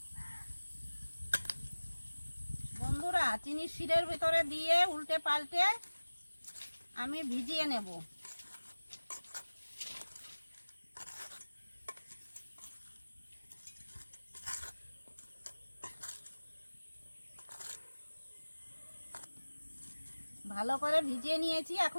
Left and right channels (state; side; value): inverted; both; correlation -1.00